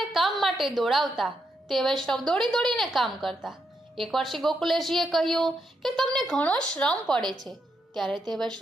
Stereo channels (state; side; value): normal; both; correlation 0.81